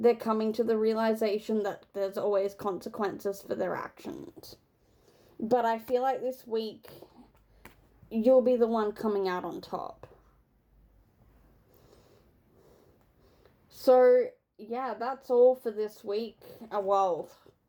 coming to the realization that there's always consequences for their actions. But I feel like this week, you'll be the one coming out on top. So, yeah, that's all for this week. Well,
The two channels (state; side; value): identical; both; correlation 1.00